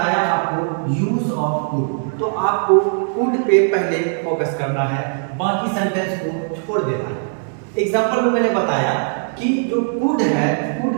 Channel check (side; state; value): left; silent; 63 dB below the other